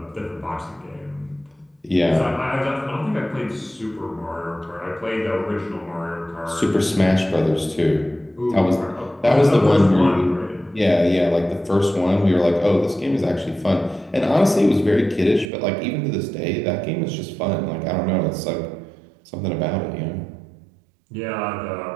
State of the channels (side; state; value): left; drops out; at 15.5 s